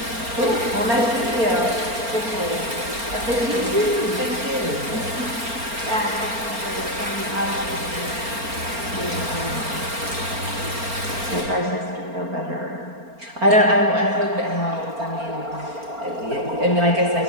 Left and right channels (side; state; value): left; late; 4.4 ms